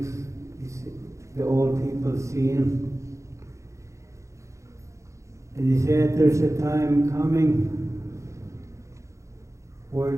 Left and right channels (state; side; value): late; left; 0.15 ms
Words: the old people seen. And he said there's a time coming where